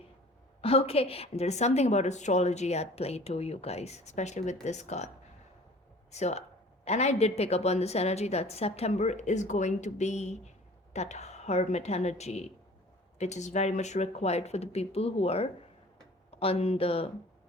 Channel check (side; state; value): both; normal; correlation 0.47